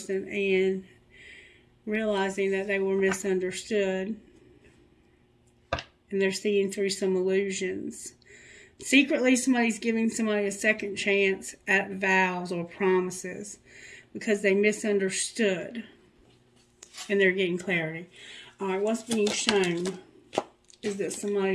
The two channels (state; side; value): identical; both; correlation 1.00